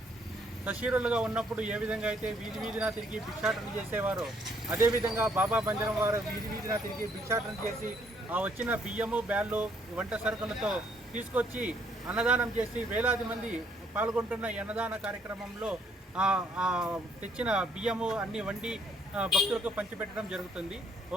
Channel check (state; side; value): normal; both; correlation 0.68